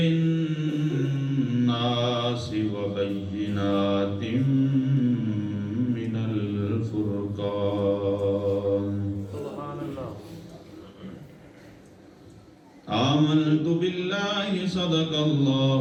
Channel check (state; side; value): identical; both; correlation 1.00